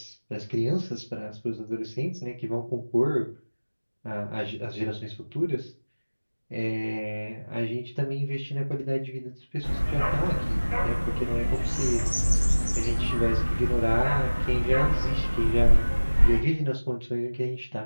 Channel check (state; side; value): inverted; both; correlation -1.00